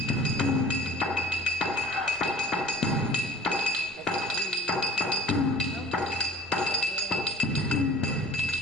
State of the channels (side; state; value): both; normal; correlation 0.46